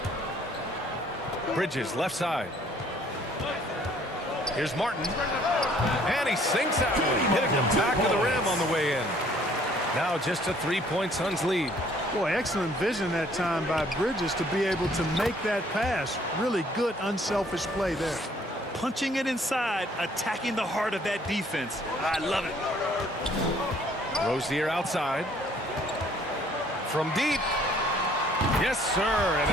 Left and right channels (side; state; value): both; normal; correlation 0.60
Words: Bridges left side. Here's Martin. And he sinks that one, hitting the back of the rim on the way in. Now just a 3-point Suns lead. Boy, excellent vision that time by Bridges to be able to make that pass. Really good, unselfish play there. Punching it inside, attacking the heart of that defense. I love it. Rozier outside. From deep. Yes, sir. And